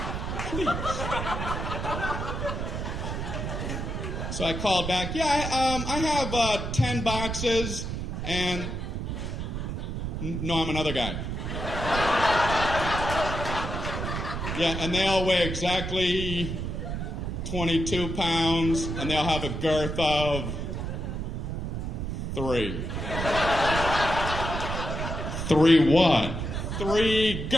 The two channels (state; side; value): noise; right; rumble, 4 dB below the sound